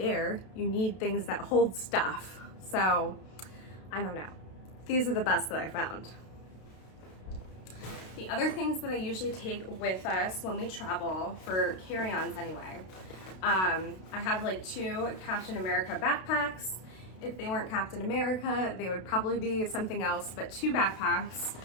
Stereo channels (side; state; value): right; late; 32 ms